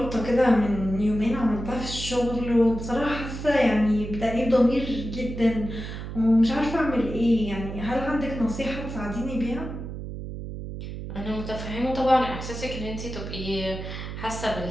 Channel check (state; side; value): noise; right; hum, 8 dB below the sound